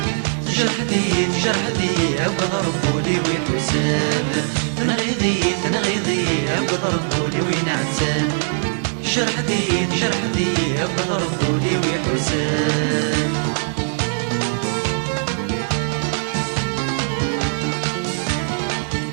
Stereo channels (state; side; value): silent; left; digital silence